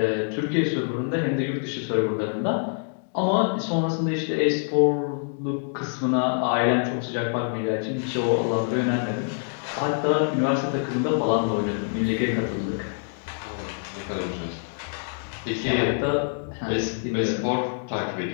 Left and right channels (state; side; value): silent; right; digital silence